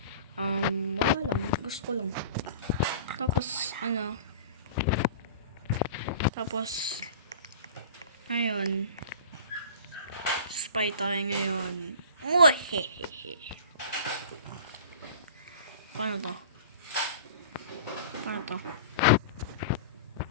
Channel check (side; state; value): both; inverted; correlation -0.41